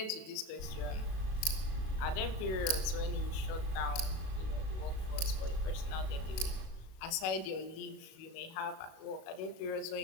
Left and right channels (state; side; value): late; right; 37 ms